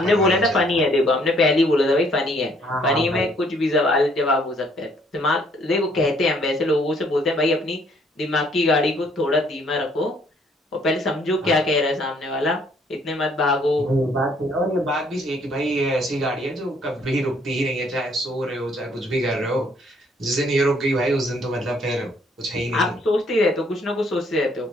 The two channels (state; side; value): normal; both; correlation 0.64